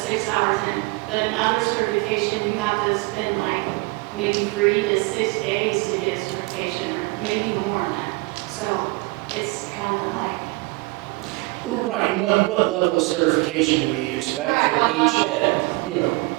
hours in, but in other certification, you have to spend like maybe 3 to 6 days to get a certification, or maybe even more than that. So it's kind of like, Well, right, and what level of certification do we expect Right, from what each level? head? You know,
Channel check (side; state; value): left; quieter; 24.8 dB